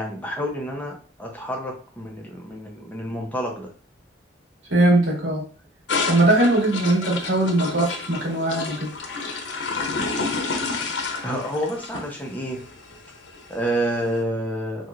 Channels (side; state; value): both; normal; correlation 0.49